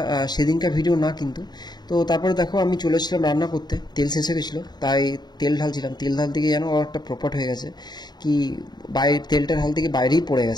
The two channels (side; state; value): right; late; 0.20 ms